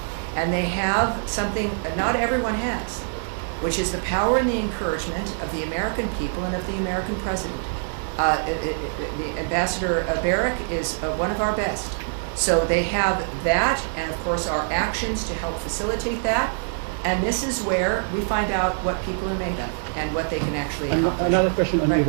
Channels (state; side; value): silent; left; digital silence